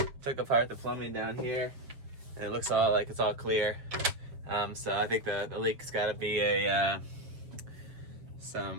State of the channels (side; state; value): left; late; 7.4 ms